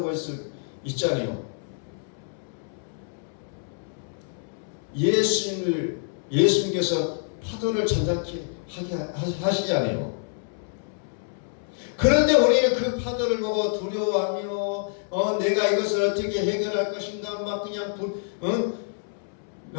있잖아요. 예수님께서 파도를 잔잔케 하게 하시잖아요. 그런데 우리는 그 파도를 보고 두려워하며 내가 이것을 어떻게 해결할 것인가 막 그냥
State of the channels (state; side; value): silent; right; 60 dB below the other